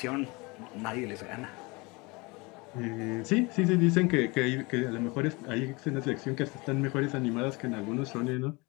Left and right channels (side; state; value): right; quieter; 26.0 dB